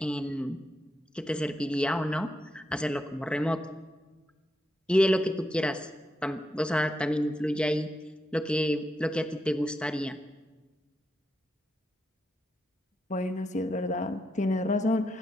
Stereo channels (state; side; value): normal; both; correlation 0.83